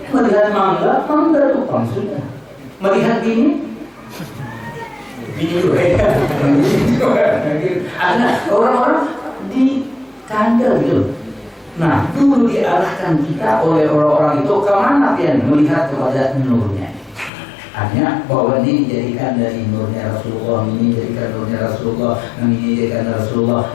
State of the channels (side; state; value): right; drops out; at 17.3 s